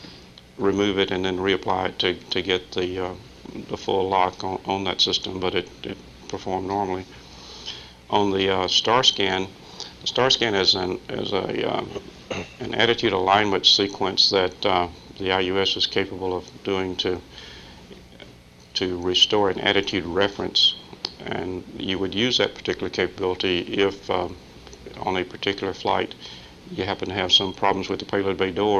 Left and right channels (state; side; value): identical; both; correlation 1.00